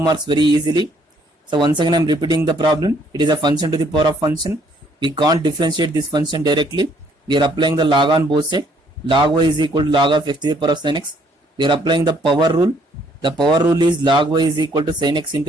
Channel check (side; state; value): both; normal; correlation 0.65